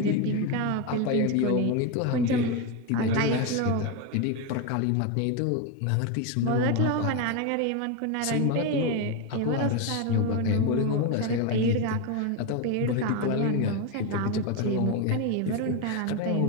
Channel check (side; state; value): both; different; correlation 0.03